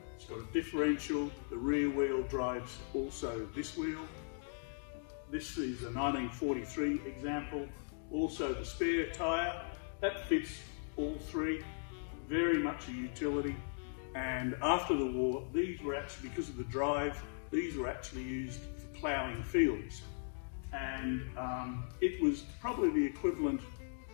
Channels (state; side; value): silent; right; digital silence